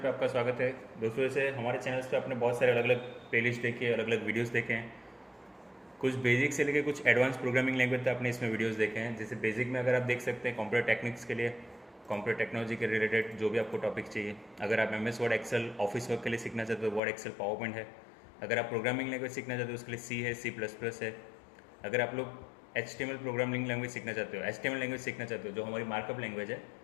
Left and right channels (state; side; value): drops out; right; at 17.0 s